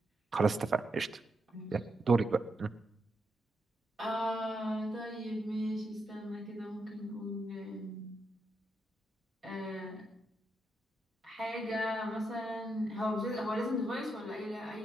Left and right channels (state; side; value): normal; both; correlation 0.82